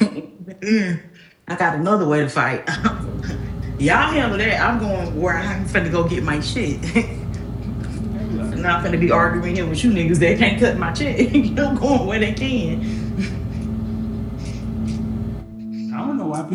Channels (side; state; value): both; identical; correlation 1.00